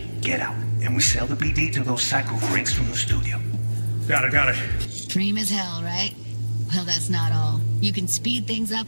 get out. And we sell the BD to those psycho freaks from the studio. Got it. Dream as hell, right? Well, that's not all. You can speed things up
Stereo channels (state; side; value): inverted; both; correlation -1.00